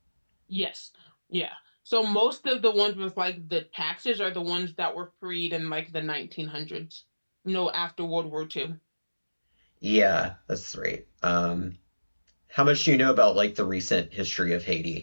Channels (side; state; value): both; inverted; correlation -1.00